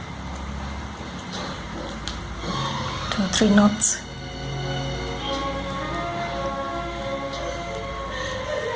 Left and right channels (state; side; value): identical; both; correlation 1.00